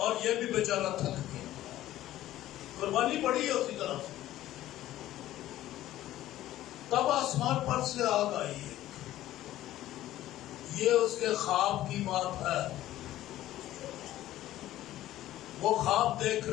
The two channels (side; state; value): right; quieter; 14.2 dB